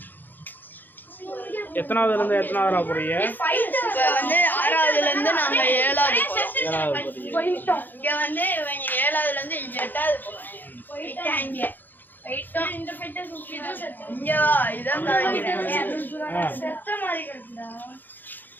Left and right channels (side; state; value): right; late; 0.088 ms